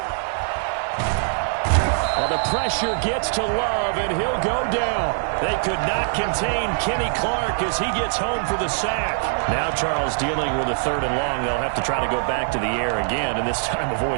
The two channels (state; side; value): silent; left; digital silence